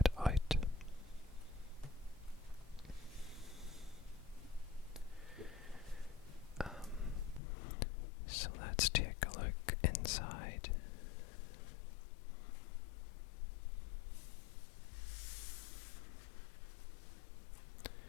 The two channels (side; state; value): right; drops out; at 7.4 s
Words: out. So let's take a look inside.